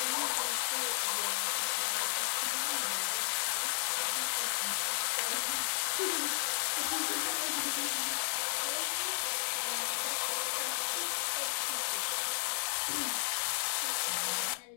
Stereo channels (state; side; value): silent; right; digital silence